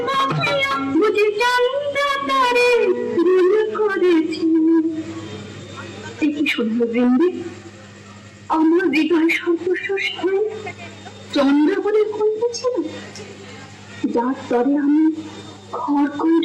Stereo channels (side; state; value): both; identical; correlation 1.00